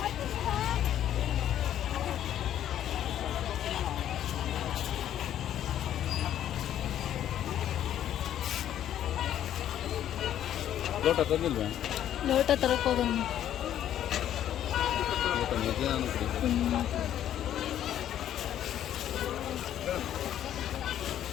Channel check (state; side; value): quieter; right; 11.0 dB